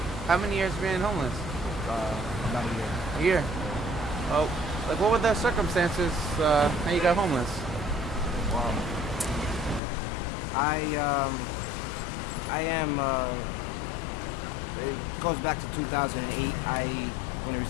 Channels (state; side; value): drops out; right; at 9.8 s